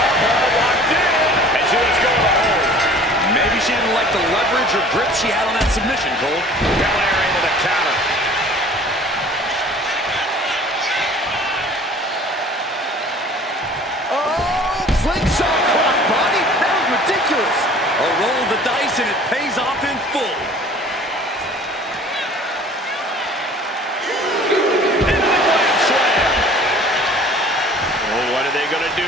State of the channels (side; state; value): both; normal; correlation 0.48